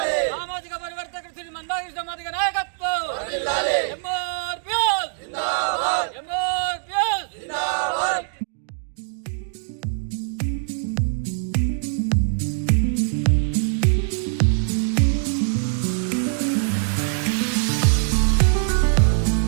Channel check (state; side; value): silent; left; digital silence